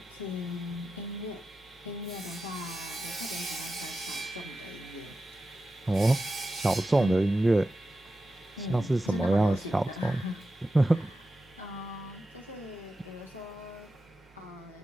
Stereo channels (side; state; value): both; normal; correlation 0.92